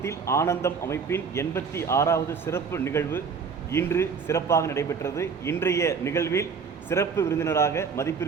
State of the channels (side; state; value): left; quieter; 5.8 dB